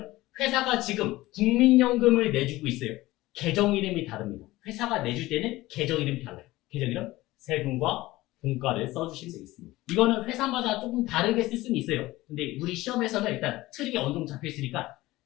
회사가 지금 국민연금을 내주고 있어요. 계정 이름이 다릅니다. 회사가 내줄 때는 계정 이름이 달라요. 계정 이름, 세금과 공과를 써주시면 되겠습니다. 이거는 회사마다 조금 다르게 쓸 수는 있어요. 근데 우리 시험에서는 일단 틀이 어느 정도 잡혀 있으니까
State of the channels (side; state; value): right; quieter; 18.2 dB